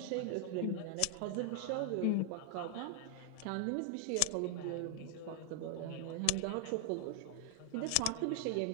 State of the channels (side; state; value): both; different; correlation 0.00